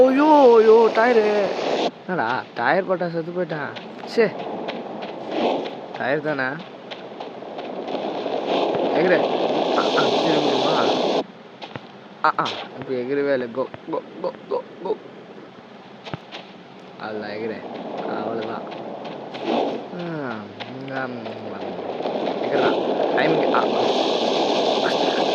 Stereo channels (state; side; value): identical; both; correlation 1.00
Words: tyre. என்னடா டயர் போட்டா செத்து போயிட்டான். டயர் தானே எகிர. திரும்பிடுமா? இப்போ எகிரவே இல்லை. கோ கோ கோ கோ கோ. அதுதான் எகிரேன், அவ்வளோதான். எகிறா டைமிங்.